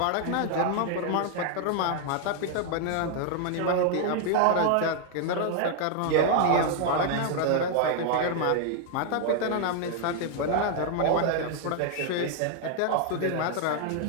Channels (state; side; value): different; both; correlation 0.00